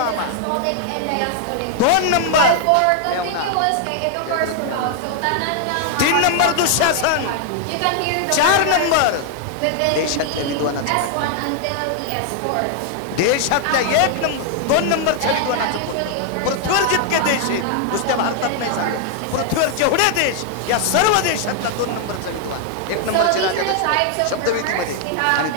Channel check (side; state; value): both; different; correlation 0.00